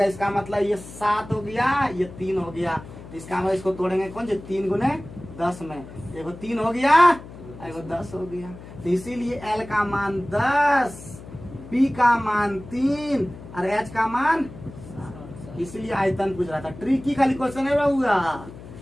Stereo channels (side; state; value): left; noise; hum, 15 dB below the sound